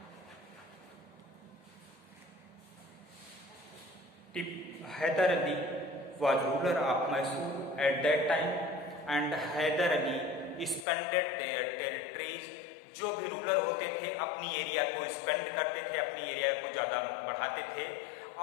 Hyder Ali was ruler of Mysore at that time, and Hyder Ali expanded their territories. जो भी ruler होते थे अपनी area को expand करते थे, अपनी area को ज़्यादा बढ़ाते थे।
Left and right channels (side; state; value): right; drops out; at 10.9 s